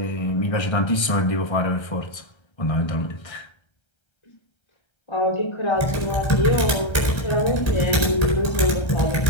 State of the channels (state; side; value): late; right; 1.3 ms